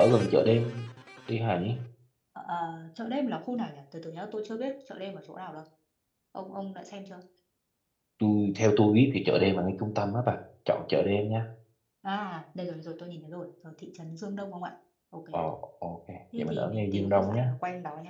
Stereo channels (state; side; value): identical; both; correlation 1.00